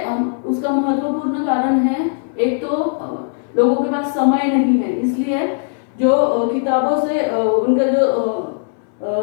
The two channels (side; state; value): right; silent; 63 dB below the other